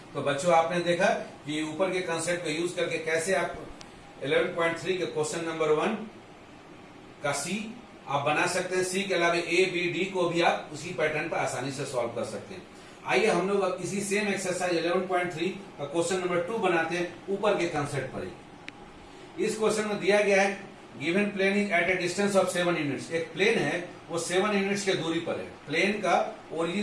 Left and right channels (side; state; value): both; identical; correlation 1.00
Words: तो बच्चों आपने देखा कि ऊपर के कंसेप्ट को यूज करके कैसे आप 11.3 के क्वेश्चन नंबर 1 का सी आप बना सकते हैं। सी के अलावा ए बी डी को भी आप उसी पैटर्न पर आसानी से सॉल्व कर सकते हैं। आइए हम लोग अब इसी सेम एक्सरसाइज 11.3 का क्वेश्चन नंबर 2 बनाते हैं ऊपर के कंसेप्ट पर ही। इस क्वेश्चन में दिया गया है given plane is at a distance of 7 units. एक प्लेन है वो 7 यूनिट्स के दूरी पर है। प्लेन का